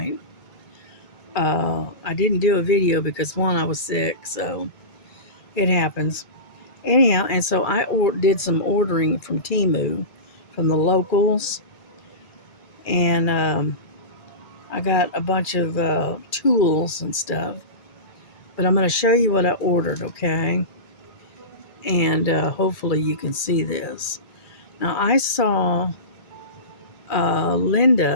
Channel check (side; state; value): right; late; 2.4 ms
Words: I didn't do a video because one, I was sick, so it happens. Anyhow, and so I did some ordering from Temu, from the locals, and I got a bunch of tools and stuff. But I'm going to show you what I ordered, okay? And hopefully you can see this. Now I saw